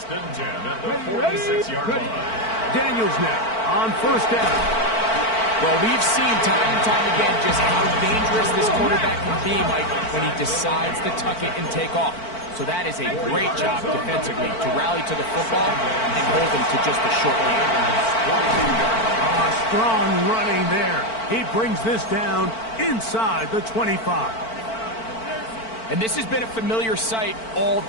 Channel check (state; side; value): late; right; 4.5 ms